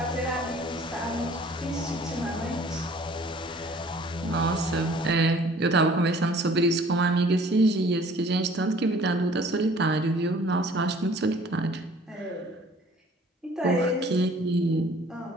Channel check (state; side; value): normal; both; correlation 0.53